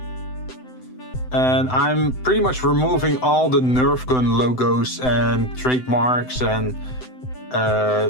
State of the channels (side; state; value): right; late; 7.9 ms